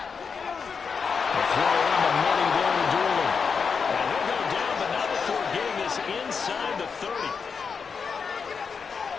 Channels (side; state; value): right; quieter; 5.8 dB